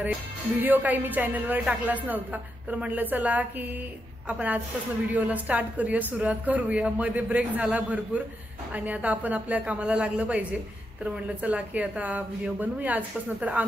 आहे. व्हिडिओ काही मी चॅनलवर टाकलाच नव्हता. तर म्हटलं चला की आपण आजपासून व्हिडिओला स्टार्ट करूया, सुरुवात करूया. मध्ये ब्रेक झाला भरपूर आणि आता आपण आपल्या कामाला लागलं पाहिजे. तर म्हटलं चला की आता व्हिडिओ बनवूया आजपासून. तर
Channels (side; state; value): both; normal; correlation 0.84